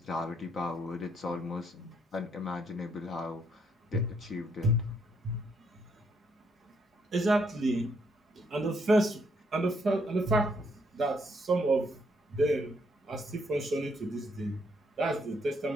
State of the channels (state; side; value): normal; both; correlation 0.72